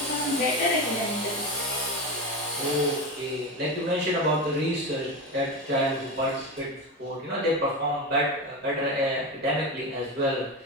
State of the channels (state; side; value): normal; both; correlation 0.20